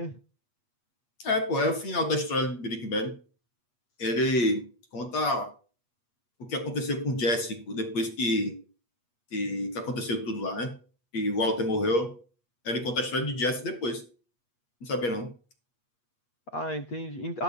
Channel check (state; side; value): late; right; 8.3 ms